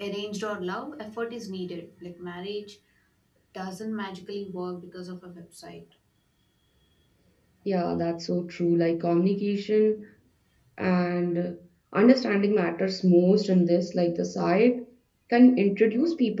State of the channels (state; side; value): identical; both; correlation 1.00